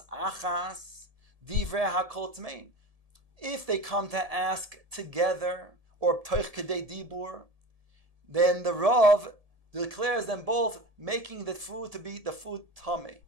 achas divrei hakol tmein. If they come to ask together, or toich kedei dibur, then the Rav declares them both making the food to be the food tamei.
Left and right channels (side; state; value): left; late; 1.7 ms